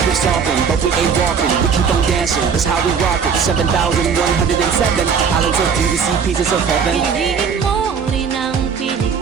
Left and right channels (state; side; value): quieter; left; 6.3 dB